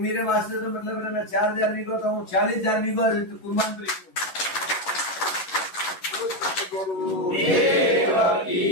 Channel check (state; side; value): late; right; 11 ms